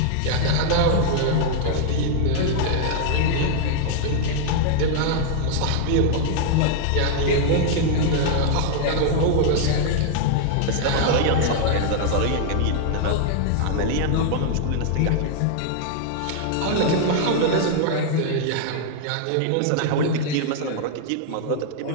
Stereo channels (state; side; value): different; both; correlation -0.01